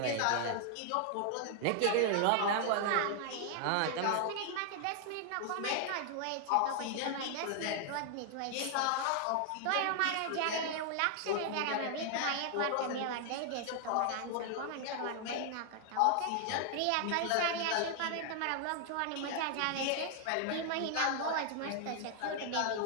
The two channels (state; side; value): different; both; correlation 0.00